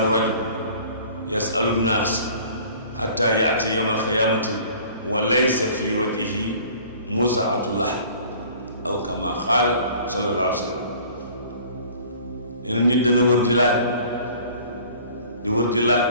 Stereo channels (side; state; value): both; inverted; correlation -0.49